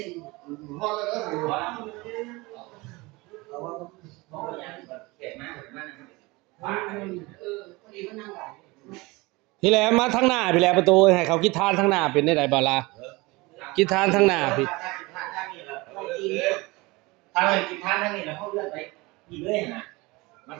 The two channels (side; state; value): left; quieter; 23.3 dB